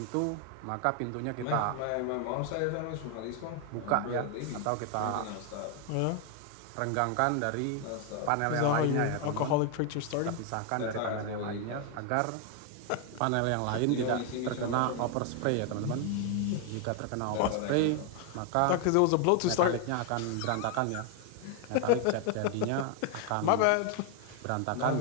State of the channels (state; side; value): different; both; correlation 0.00